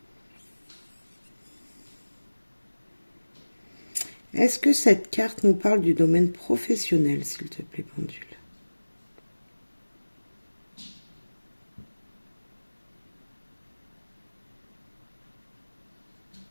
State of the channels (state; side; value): inverted; both; correlation -1.00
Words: Est-ce que cette carte nous parle du domaine professionnel, s'il te plaît, pendule?